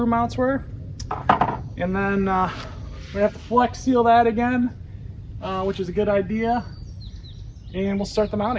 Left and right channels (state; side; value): identical; both; correlation 1.00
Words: mounts were. And then we have to flex seal that again, which is a good idea. And we'll start the